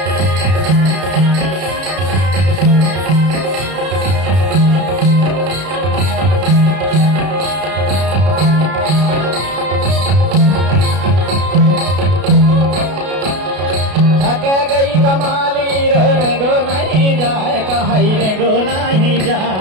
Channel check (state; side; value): late; left; 32 ms